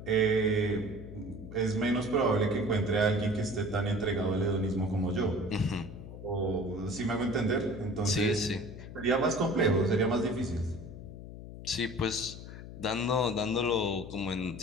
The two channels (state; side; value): noise; left; hum, 12 dB below the sound